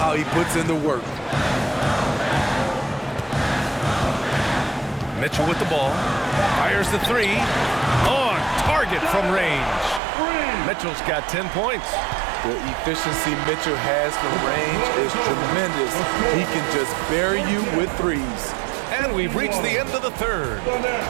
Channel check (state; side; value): drops out; left; at 10.0 s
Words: he puts in the work. Mitchell with the ball. Fires the 3. On target from range. Mitchell's got 10 points. The efficiency Mitchell has from range is tremendous. He can just bury you with threes. And we've reached the end of the third.